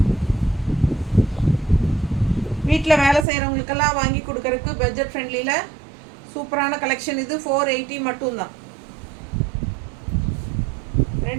வீட்டில் வேலை செய்கிறவங்களுக்கெல்லாம் வாங்கி கொடுக்கறதுக்கு பட்ஜெட் ஃப்ரெண்ட்லியில் சூப்பரான கலெக்ஷன் இது. 480 மட்டும்தான்.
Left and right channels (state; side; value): drops out; left; at 3.2 s